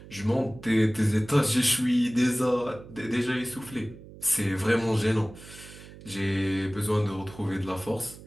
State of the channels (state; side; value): noise; right; hum, 18 dB below the sound